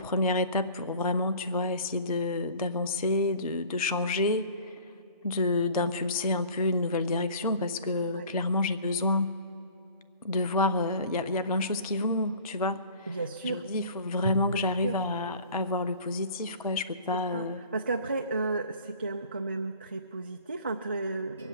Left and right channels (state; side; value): inverted; both; correlation -0.47